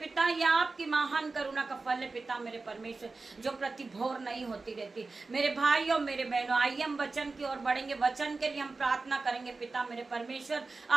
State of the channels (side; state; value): left; quieter; 3.8 dB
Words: यह आपकी महान करुणा का फल है पिता मेरे परमेश्वर, जो प्रति भोर नहीं होती रहती। मेरे भाइयों मेरे बहनों, आइए हम वचन की ओर बढ़ेंगे। वचन के लिए हम प्रार्थना करेंगे पिता मेरे परमेश्वर।